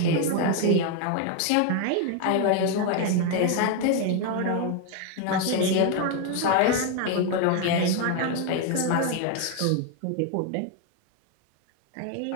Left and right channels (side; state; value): both; different; correlation 0.01